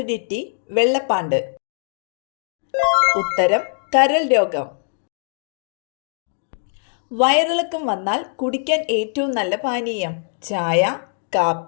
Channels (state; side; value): silent; right; digital silence